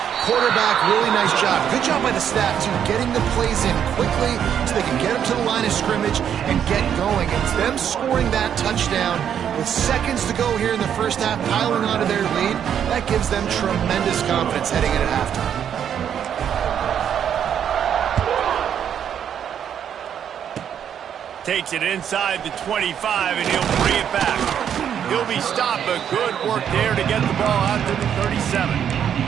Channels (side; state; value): left; quieter; 8.9 dB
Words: Quarterback, really nice job. Good job by the staff, too, getting the plays in quickly so they can get them to the line of scrimmage and get going. It's them scoring that touchdown with seconds to go here in the 1st half, piling onto their lead. That gives them tremendous confidence heading into halftime. Takes it inside the 25, and he'll bring it back. He'll be stopped, but good work there to get the ball out to the 37.